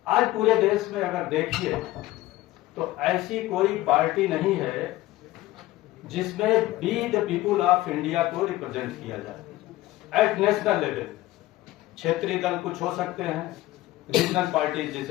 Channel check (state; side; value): quieter; right; 16.9 dB